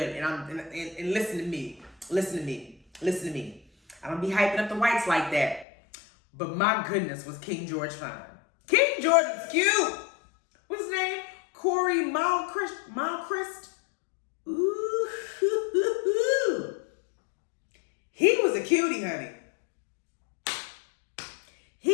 And listen to me. I don't be hyping up the whites like that. But my goodness, was King George fine. King George is cute. What's his name? Corey Malchrist. Ooh, he was a cutie, honey.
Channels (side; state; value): right; drops out; at 5.7 s